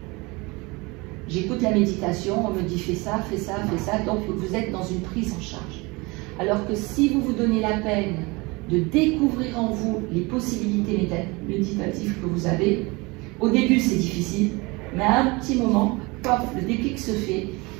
J'écoute la méditation, on me dit fais ça, fais ça, fais ça, donc vous êtes dans une prise en charge. Alors que si vous vous donnez la peine de découvrir en vous les possibilités méditatives que vous avez, au début c'est difficile, mais à un petit moment, pop, le déclic se fait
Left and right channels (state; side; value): quieter; left; 25.2 dB